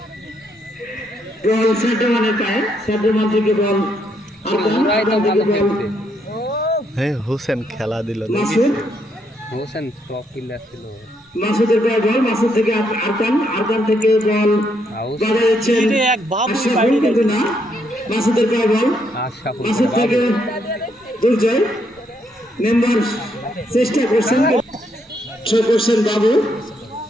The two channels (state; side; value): normal; both; correlation 0.75